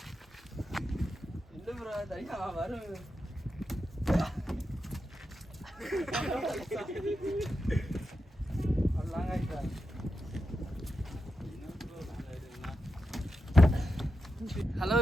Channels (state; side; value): normal; both; correlation 0.88